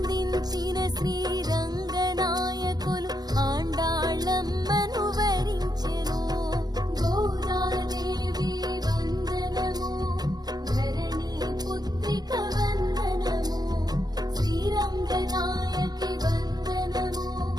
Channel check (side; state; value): left; late; 0.19 ms